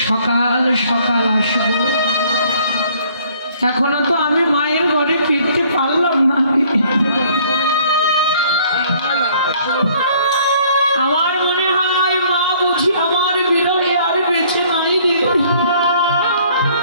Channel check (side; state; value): both; inverted; correlation -0.59